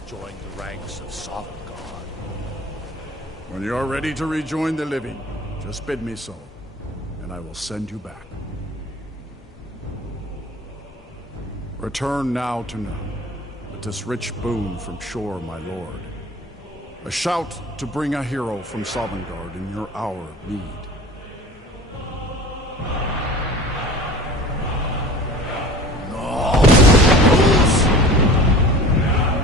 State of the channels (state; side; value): normal; both; correlation 0.40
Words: the ranks of Sovngarde. When you are ready to rejoin the living, just bid me so, and I will send you back. Return now to none, with this rich boon from Shore, my lord. A shout to bring a hero from Sovngarde in your hour of need.